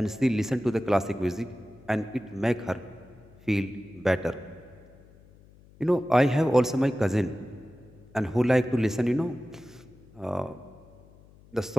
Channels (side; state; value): left; noise; hum, 25 dB below the sound